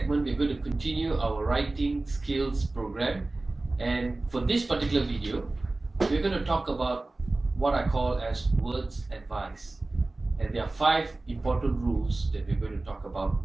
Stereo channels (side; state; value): left; quieter; 3.0 dB